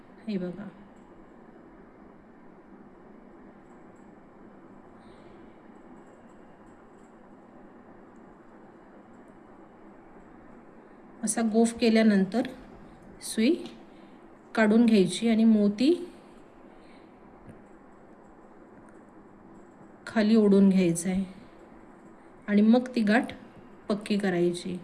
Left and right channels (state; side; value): identical; both; correlation 1.00